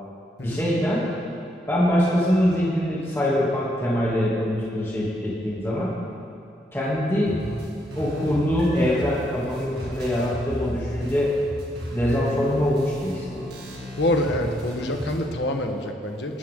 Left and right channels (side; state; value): both; normal; correlation 0.75